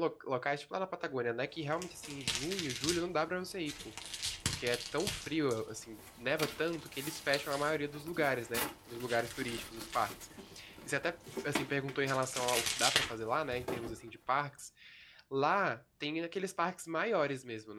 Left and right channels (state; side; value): identical; both; correlation 1.00